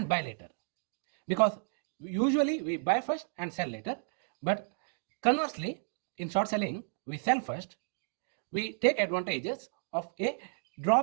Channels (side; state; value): left; silent; digital silence